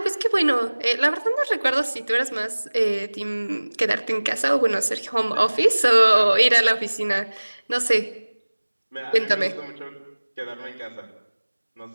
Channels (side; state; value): both; inverted; correlation -1.00